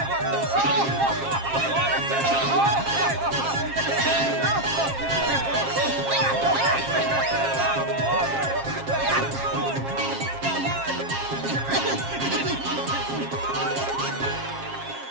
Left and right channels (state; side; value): late; left; 7.4 ms